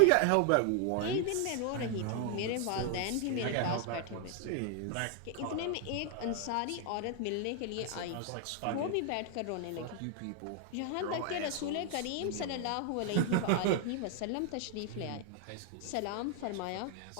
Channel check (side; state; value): both; different; correlation 0.00